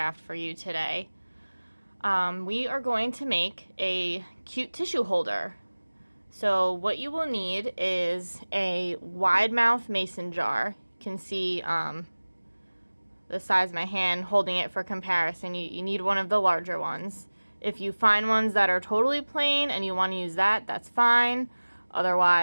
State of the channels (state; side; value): inverted; both; correlation -1.00